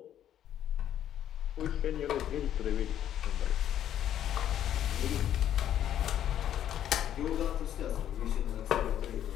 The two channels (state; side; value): quieter; right; 10.7 dB